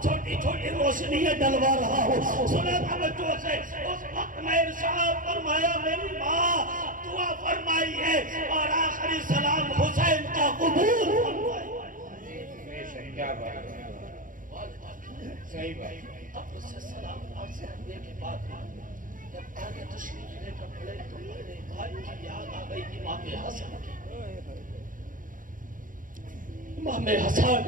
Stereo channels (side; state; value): left; late; 0.39 ms